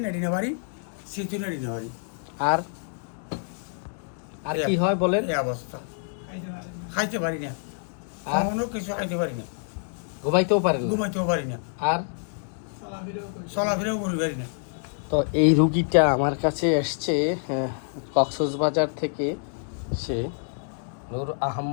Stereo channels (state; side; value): silent; right; 60 dB below the other